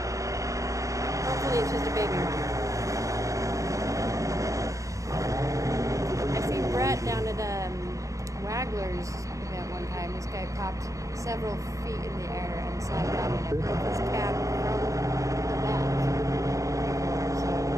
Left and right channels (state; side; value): late; left; 0.16 ms